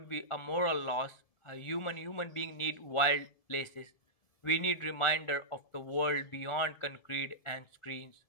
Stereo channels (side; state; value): right; late; 1.5 ms